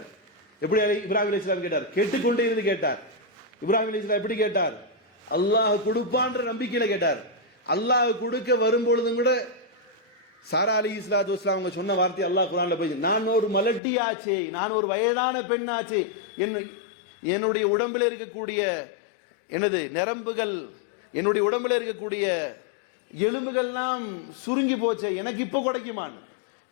எப்படி இப்ராஹிம் அலைஹிஸ்ஸலாம் கேட்டார்? கேட்டுக்கொண்டே இருந்து கேட்டார். இப்ராஹிம் அலைஹிஸ்ஸலாம் எப்படி கேட்டார்? அல்லாஹ் கொடுப்பான்ற நம்பிக்கையில கேட்டார். அல்லாஹ் கொடுக்க வரும்பொழுதும் கூட சாரா அலைஹிஸ்ஸலாத்து வஸ்ஸலாம் அவங்க சொன்ன வார்த்தை அல்லாஹ் குர்ஆன்ல போய், நான் ஒரு மலட்டியாச்சே, நான் ஒரு வயதான பெண்ணாச்சே, என்னுடைய உடம்பில் இருக்கக்கூடிய எனது நரம்புகள், என்னுடைய உடம்பில் இருக்கக்கூடிய எலும்புகள்லாம் சுருங்கி போச்சே, எனக்கு இப்போ கிடைக்குமான்.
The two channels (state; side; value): drops out; right; at 13.8 s